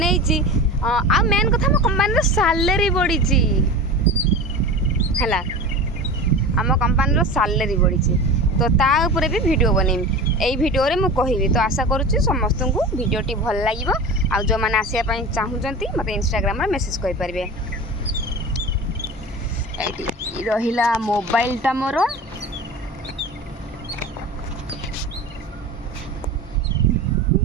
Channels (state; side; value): normal; both; correlation 0.31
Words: आ मेन कथा मो कंपनी सैलरी बढ़ी है आम कंपनी सैलरी बढ़ी तो ताऊपर भी वीडियो बनईमी यही वीडियो रे मु कहबी। तो आशा करुच्ची समस्त को वीडियोटी भल लगे आ जो मैंने आसापी चाहते मत इंस्टाग्राम रे मेसेज करें। रहिला मोबाइलटा मोर